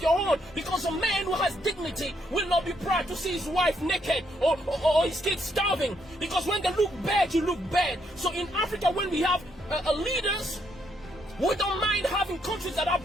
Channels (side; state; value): both; normal; correlation 0.74